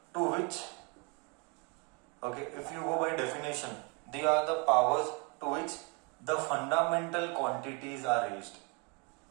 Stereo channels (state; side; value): quieter; left; 32.3 dB